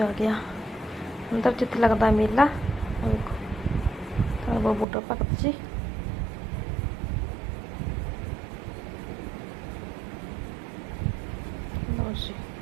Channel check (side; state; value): left; drops out; at 4.9 s